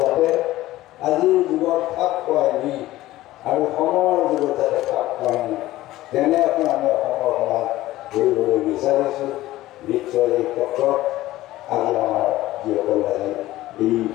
আজিৰ যুগত খাপ খুৱাই নি আৰু সময়ৰ যুগত যাতে খাপ খুৱাই নি তেনে এখন আমি অসমৰ সমাজ গঢ়িবলৈ বিচাৰিছোঁ নিশ্চয় এই ক্ষেত্ৰত আজি আমাৰ যিসকল আজি এই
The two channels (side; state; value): right; quieter; 16.2 dB